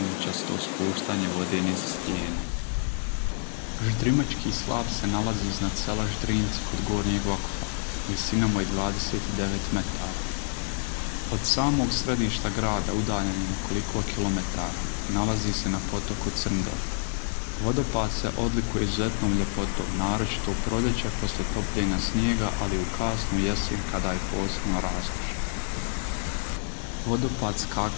spuštanje vode niz stijene. Ždrimački slap se nalazi iznad sela Ždrinci kod Gornjeg Vakuffa, visinom od 29 metara. Od samog središta grada, udaljen nekoliko kilometara, nalazi se na potoku Crndor. Vodopad se odlikuje izuzetnom ljepotom, naročito u proljeće poslije topljenja snijega, ali u kasnu jesen kada je posebno raskošan. Vodopad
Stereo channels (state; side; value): silent; right; digital silence